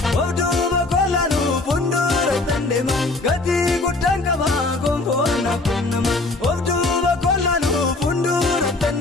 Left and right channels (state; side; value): quieter; right; 3.2 dB